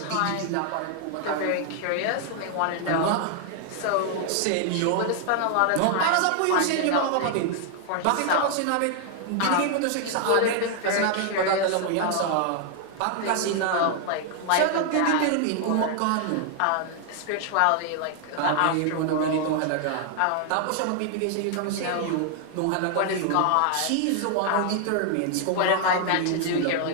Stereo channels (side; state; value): both; different; correlation 0.00